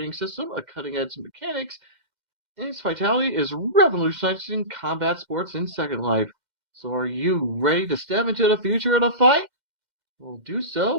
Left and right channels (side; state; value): left; late; 2.1 ms